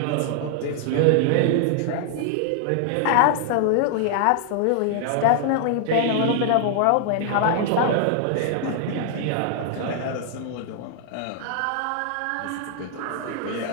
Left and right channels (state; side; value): different; both; correlation 0.00